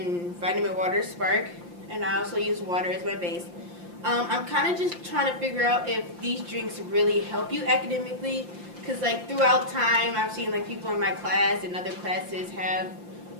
vitamin water Spark, and I also use water as my base. I'm kind of just trying to figure out if these drinks really help you academically, because throughout time I've seen people in my class and other classes have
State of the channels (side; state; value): left; late; 5.7 ms